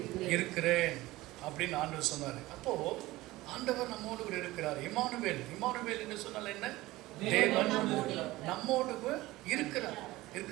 இருக்கிறேன் அப்படின்னு ஆண்டவர் சொன்னார். அப்போது ஆண்டவர் நம்மோடு கூட இருக்கிறார். இம்மானுவேல், இம்மானுவேல் என்று சொன்னால் என்ன? தேவன் நம்மோடு கூட இருக்கிறார்.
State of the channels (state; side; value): quieter; left; 18.4 dB